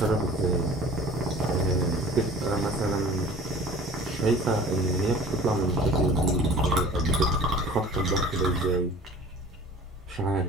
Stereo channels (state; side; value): normal; both; correlation 0.45